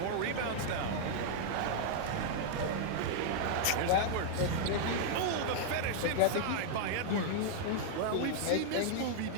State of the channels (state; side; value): different; both; correlation -0.01